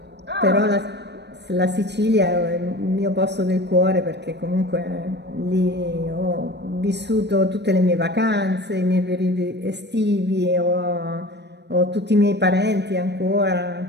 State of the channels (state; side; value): late; left; 0.50 ms